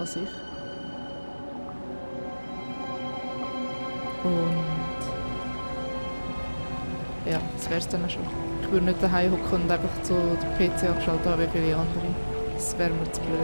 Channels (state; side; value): inverted; both; correlation -1.00